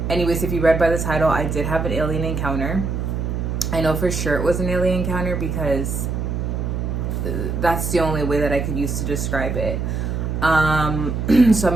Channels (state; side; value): noise; right; hum, 2 dB below the sound